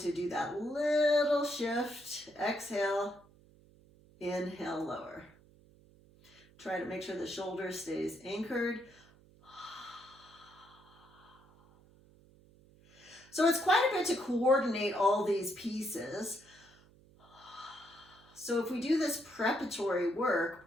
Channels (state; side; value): noise; right; hum, 26 dB below the sound